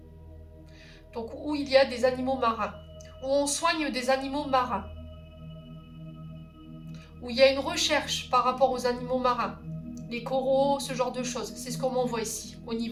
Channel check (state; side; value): identical; both; correlation 1.00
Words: Donc où il y a des animaux marins. Où on soigne des animaux marins. Où il y a une recherche par rapport aux animaux marins. Les coraux, ce genre de choses. C'est ce qu'on m'envoie ici, au